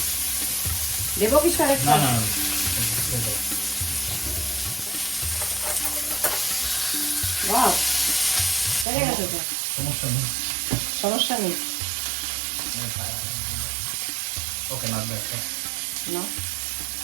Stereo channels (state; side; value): drops out; left; at 8.8 s